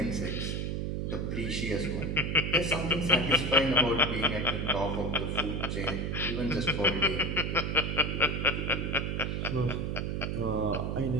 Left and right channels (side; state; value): right; noise; hum, 1 dB below the sound